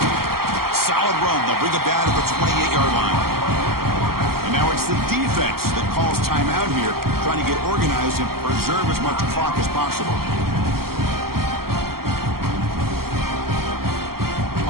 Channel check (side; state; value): left; late; 0.94 ms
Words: Solid run. They'll bring it down to the 28-yard line. And now it's the defense that calls timeout here, trying to get organized and preserve as much clock as possible.